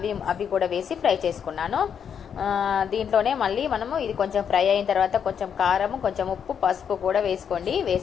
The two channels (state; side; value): quieter; right; 7.7 dB